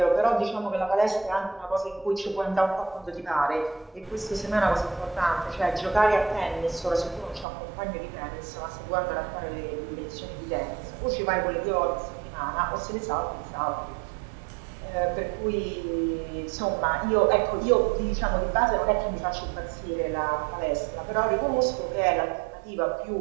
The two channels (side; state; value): left; drops out; at 7.5 s